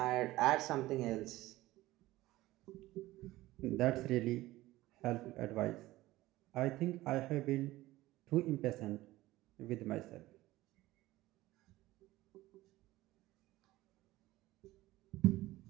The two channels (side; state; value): left; quieter; 17.4 dB